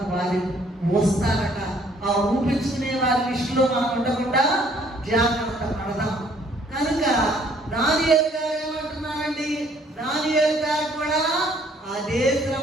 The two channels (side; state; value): both; normal; correlation 0.62